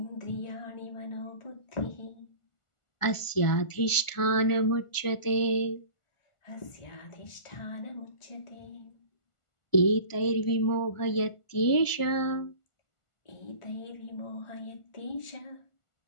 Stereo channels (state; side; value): late; right; 1.4 ms